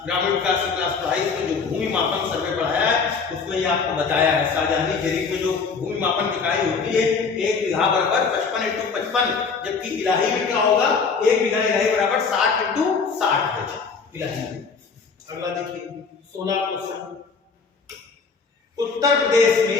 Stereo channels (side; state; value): right; quieter; 5.1 dB